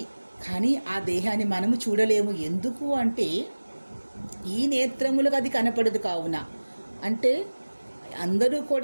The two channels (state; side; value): inverted; both; correlation -1.00